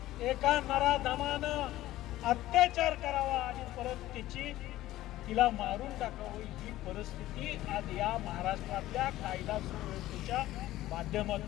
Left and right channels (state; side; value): quieter; right; 15.4 dB